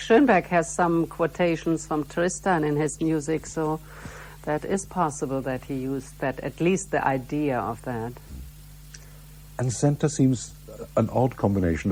has some quotations from Tristan in his music, so that is possible that he used that, at least the idea of that. And Senta seems an odd combination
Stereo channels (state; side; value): identical; both; correlation 1.00